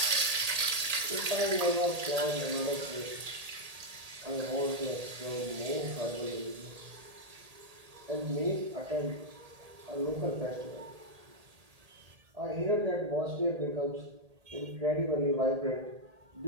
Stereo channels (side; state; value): left; late; 1.8 ms